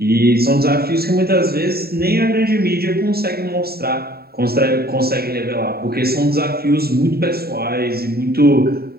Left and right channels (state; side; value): late; left; 0.45 ms